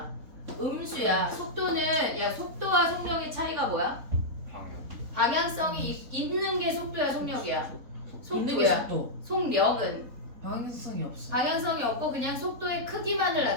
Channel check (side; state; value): left; late; 3.7 ms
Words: 음수야. 속도는 야 속도와 속력의 차이가 뭐야? 방향성이 있는 게 속도야 속력이야? 있는 게 속도야. 속도. 속력은 방향성이 없어. 방향성이 없고 그냥 속도의 크기만을